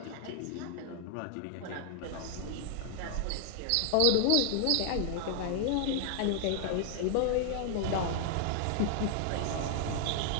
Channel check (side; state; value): both; different; correlation 0.00